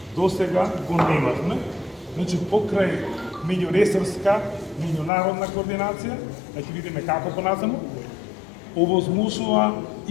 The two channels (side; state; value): right; drops out; at 5.1 s